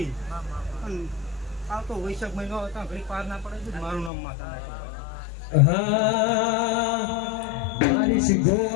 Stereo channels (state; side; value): drops out; right; at 4.1 s